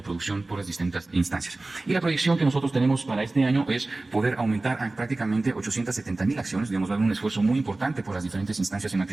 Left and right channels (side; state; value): left; quieter; 3.0 dB